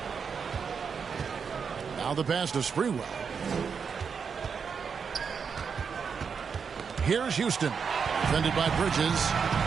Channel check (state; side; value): quieter; left; 6.2 dB